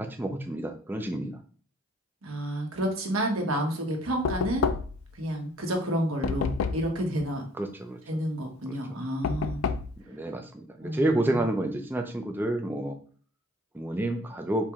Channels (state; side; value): normal; both; correlation 0.58